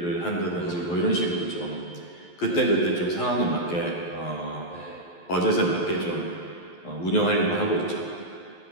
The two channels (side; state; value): right; late; 11 ms